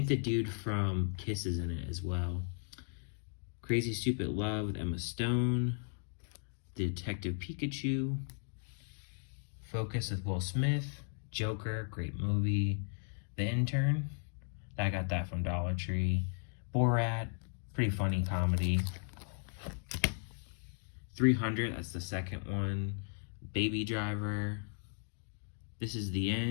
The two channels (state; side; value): silent; right; 54 dB below the other